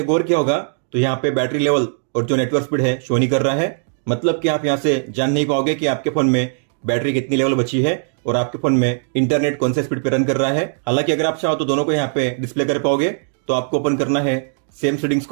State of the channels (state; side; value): silent; left; digital silence